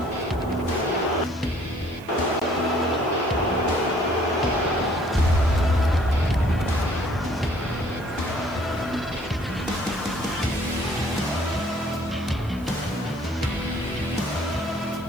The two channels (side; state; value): left; noise; hiss, 25 dB below the sound